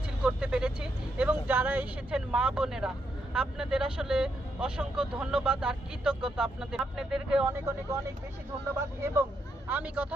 করতে পেরেছি এবং যারা এসেছেন মা বোনেরা আপনাদের আসলে অসংখ্য ধন্যবাদ আর কৃতজ্ঞতা আপনাদেরকে অনেক অনেক অনেক বেশি ধন্যবাদ। এবং আমি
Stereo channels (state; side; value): normal; both; correlation 0.79